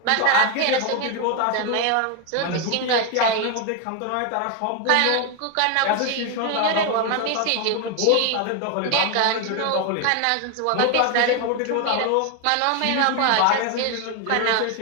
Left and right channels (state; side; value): different; both; correlation 0.01